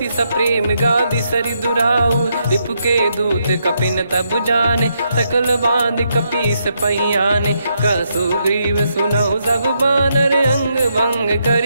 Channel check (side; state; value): both; inverted; correlation -0.79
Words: सप्रेम गादि सरि दुराऊ, रिपु के दूत कपिन तब जाने, सकल बांध कपीस पहियाने, कह सुग्रीव सुनहु सब बानर, अंग भंग